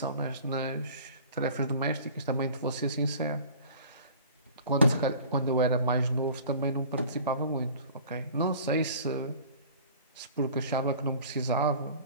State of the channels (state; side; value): inverted; both; correlation -0.45